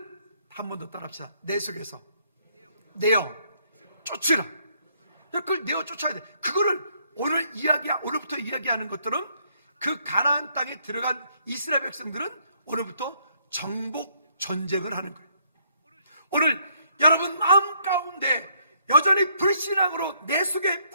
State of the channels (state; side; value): inverted; both; correlation -0.70